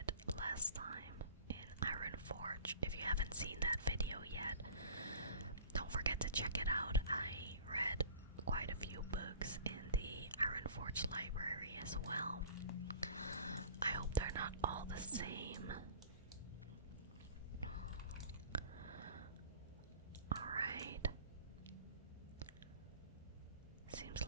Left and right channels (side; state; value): both; inverted; correlation -0.42